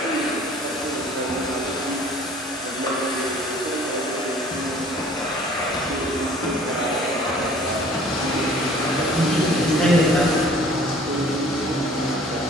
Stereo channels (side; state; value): both; normal; correlation 0.52